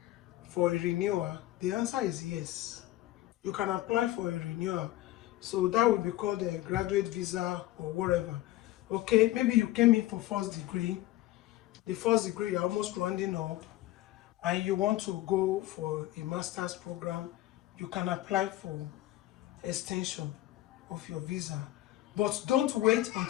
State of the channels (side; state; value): right; quieter; 15.8 dB